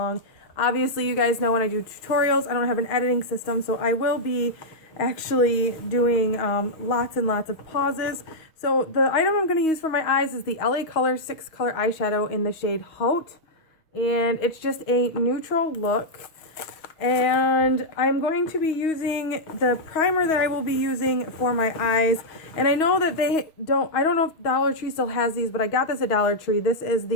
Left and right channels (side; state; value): right; late; 6.3 ms